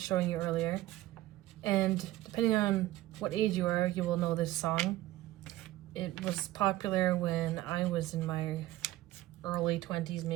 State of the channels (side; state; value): left; quieter; 16.1 dB